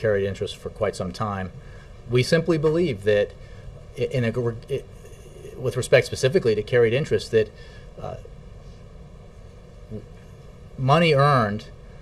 interest for quite some time. We simply believe that, with respect specifically to carried interest, that money earned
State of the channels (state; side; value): identical; both; correlation 1.00